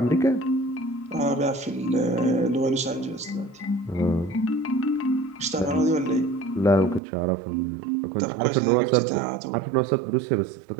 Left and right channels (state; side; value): drops out; left; at 7.0 s